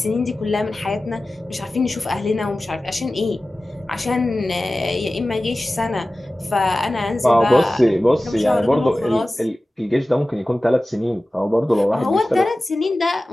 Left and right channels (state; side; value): normal; both; correlation 0.96